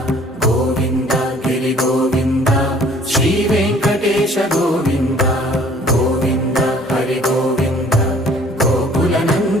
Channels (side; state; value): both; normal; correlation 0.55